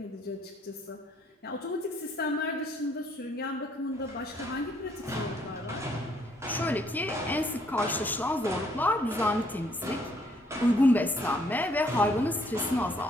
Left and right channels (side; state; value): both; normal; correlation 0.67